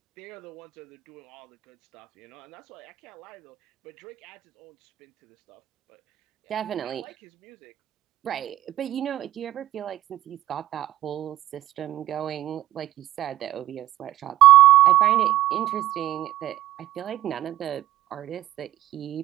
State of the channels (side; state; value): left; quieter; 13.8 dB